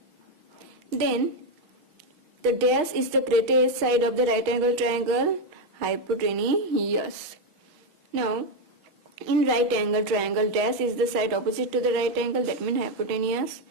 then the dash is the greatest side of the right angle triangle, hypotenuse. Now, in right angle triangle, dash is the side opposite to the right angle, that means hypotenuse.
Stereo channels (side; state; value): left; late; 6.4 ms